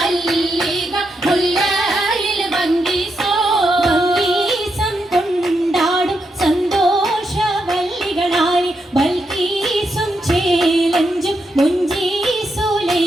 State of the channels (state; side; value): normal; both; correlation 0.83